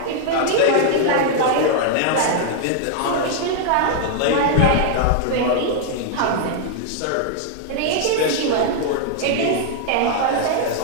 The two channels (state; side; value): different; both; correlation -0.01